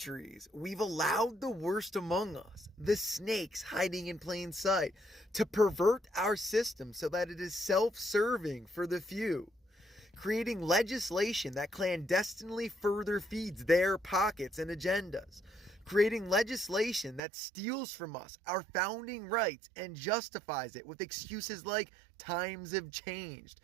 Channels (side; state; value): left; drops out; at 17.2 s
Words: we've allowed the worst among us, the snakes hiding in plain sight, to pervert our system so that it is self-serving for the few, creating legislation that clandestinely further feeds their pockets and agendas, creating legislation that steals from us our founding rights and justifies it with excuses like times have changed,